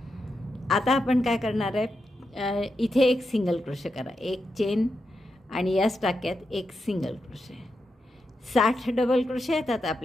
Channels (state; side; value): normal; both; correlation 0.86